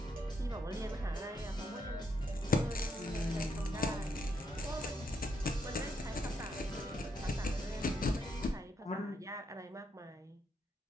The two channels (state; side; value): normal; both; correlation 0.77